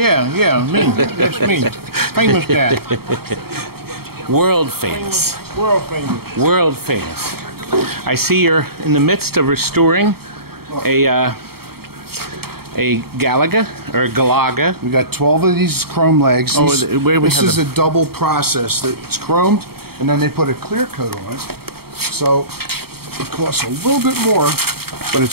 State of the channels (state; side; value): late; left; 0.95 ms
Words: That's me. Famous guy. World famous. World famous. World famous. I see you're in the midst of restoring a Galaga or a Galaga. We got 12 of these chrome legs. This is a double process. It's chromed, and then they put a clear coat on it. So it costs a little bit more, but